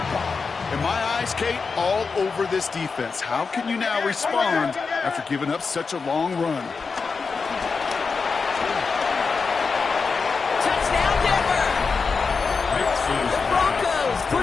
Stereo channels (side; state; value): right; quieter; 4.9 dB